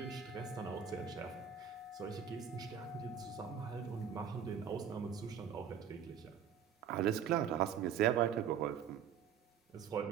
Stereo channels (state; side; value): quieter; left; 8.0 dB